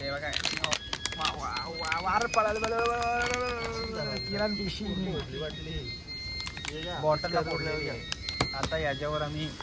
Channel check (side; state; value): both; identical; correlation 1.00